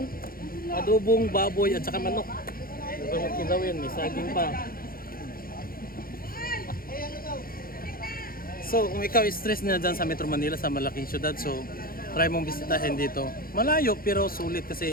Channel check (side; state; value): right; late; 0.42 ms